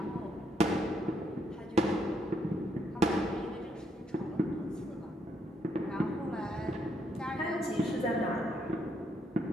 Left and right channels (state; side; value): normal; both; correlation 0.74